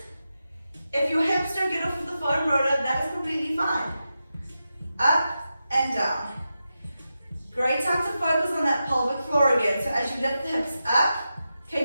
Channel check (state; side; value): inverted; both; correlation -0.90